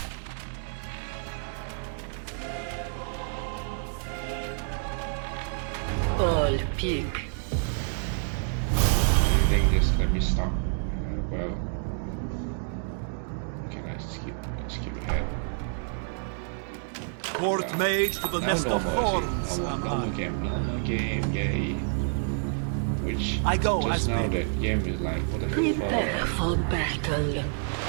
All peak. Anything, just let me stop. Well, can I skip ahead? Court mage to the Now nest of normal, thorns. normal game, yay. Which I go just as now bid. that game is like, what the Prepare fuck? for battle.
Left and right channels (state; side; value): silent; left; 59 dB below the other